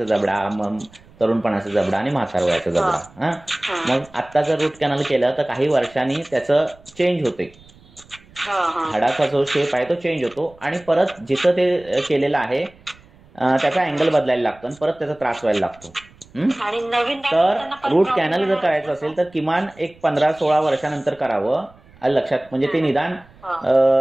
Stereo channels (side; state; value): right; noise; rumble, 26 dB below the sound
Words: जबडा, मग तरुणपणाचा जबडा आणि म्हातार वयाचा जबडा. मग आता जर रूट कॅनल केलं तर काही वर्षांनी त्याचं चेंज होते. हाडाचा जो शेप आहे तो चेंज होतो आणि परत जिथं ते केलेलं आहे त्याचा अँगल बदलायला लागतो आणि परत त्याचा त्रास व्हायला लागतो. तर रूट कॅनल जर करायचं असेल तर किमान एक 15-16 वर्षानंतर करावं. लक्षात. म्हणजे ते निदान